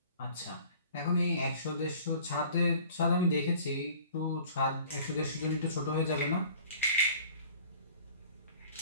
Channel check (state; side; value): inverted; both; correlation -0.49